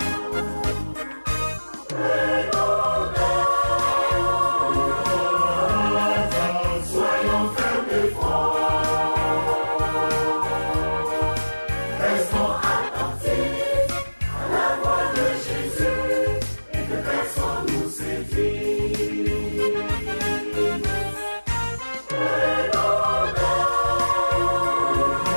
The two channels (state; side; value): inverted; both; correlation -1.00